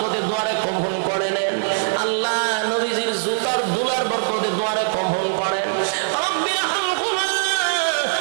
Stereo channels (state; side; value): silent; left; 65 dB below the other